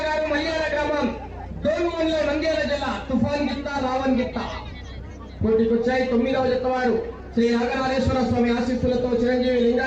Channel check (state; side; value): identical; both; correlation 1.00